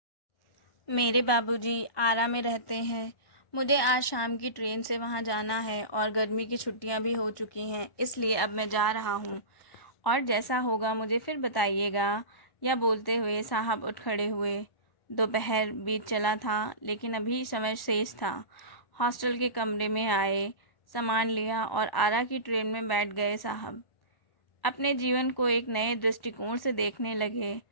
मेरे बाबूजी आरा में रहते हैं। मुझे आज शाम की ट्रेन से वहाँ जाना है और गर्मी की छुट्टियाँ भी हो चुकी हैं, इसलिए अब मैं जा रहा हूँ और जैसा होगा मुझे फिर बताइएगा। यह बोलते हुए साहब उठ खड़े हुए। दोपहर बीत चला था, लेकिन अभी समय शेष था। हॉस्टल के कमरे में आए, सामान लिया और आरा की ट्रेन में बैठ गए। साहब अपने जीवन को एक नए दृष्टिकोण से देखने लगे।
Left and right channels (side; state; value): right; late; 1.4 ms